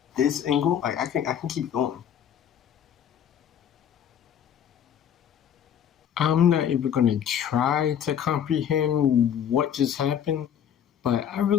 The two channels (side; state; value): right; quieter; 9.1 dB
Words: this angle. Like, I can keep going. I'm not even gonna try to comprehend what just happened, but I